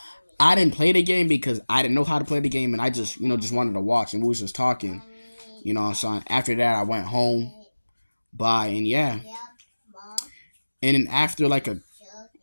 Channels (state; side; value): inverted; both; correlation -1.00